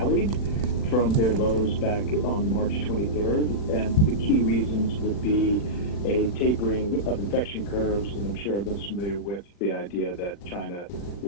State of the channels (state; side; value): late; right; 40 ms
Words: from their lows back on March 23rd, and the key reasons would be a tapering of infection curves, and I'm sure everyone's familiar with the idea that China